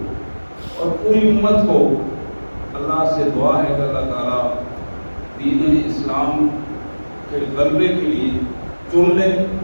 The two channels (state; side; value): inverted; both; correlation -1.00